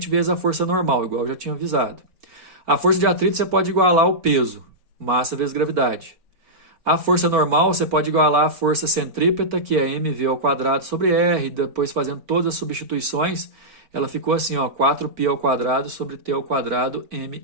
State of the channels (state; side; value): late; left; 4.4 ms